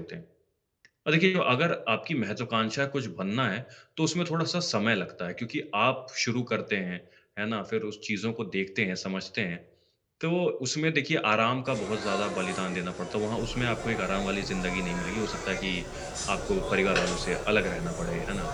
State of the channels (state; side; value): identical; both; correlation 1.00